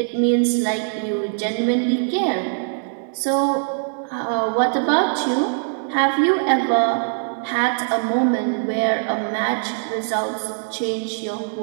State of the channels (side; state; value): left; silent; digital silence